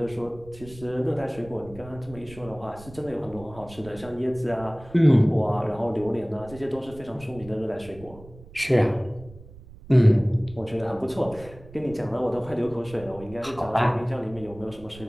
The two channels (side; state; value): right; noise; rumble, 19 dB below the sound